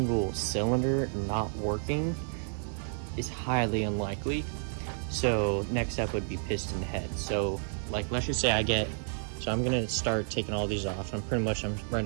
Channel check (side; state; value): left; silent; digital silence